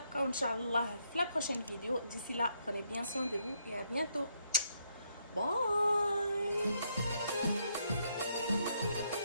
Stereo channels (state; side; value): inverted; both; correlation -0.74